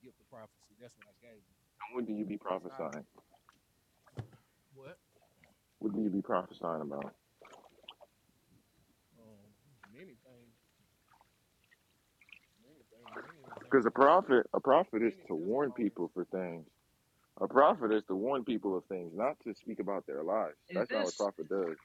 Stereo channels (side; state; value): both; identical; correlation 1.00